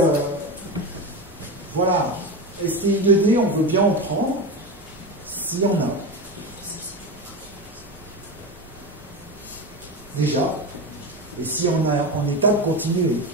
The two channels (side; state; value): both; normal; correlation 0.20